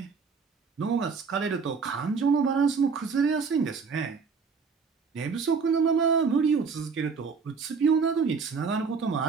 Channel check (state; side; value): quieter; left; 5.3 dB